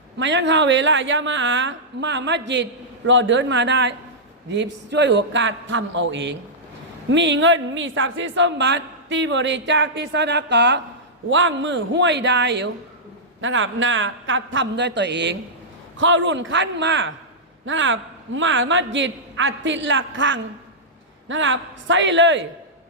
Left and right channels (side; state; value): both; normal; correlation -0.12